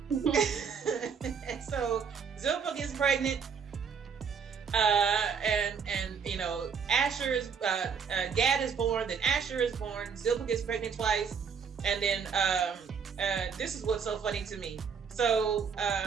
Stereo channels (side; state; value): left; quieter; 6.4 dB